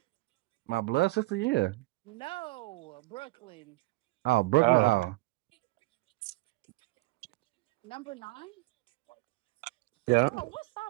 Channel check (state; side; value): quieter; left; 22.2 dB